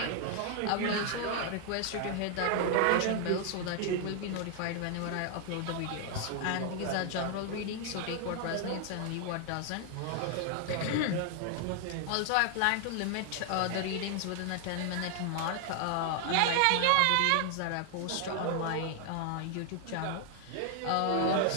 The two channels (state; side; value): different; both; correlation 0.00